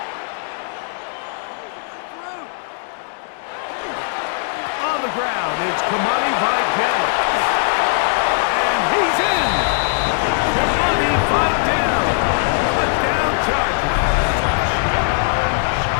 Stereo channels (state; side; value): silent; right; digital silence